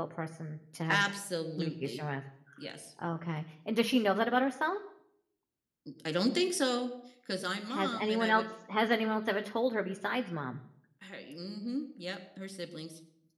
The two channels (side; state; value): both; identical; correlation 1.00